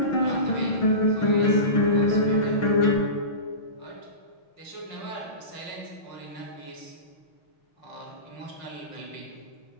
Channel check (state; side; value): late; right; 6.2 ms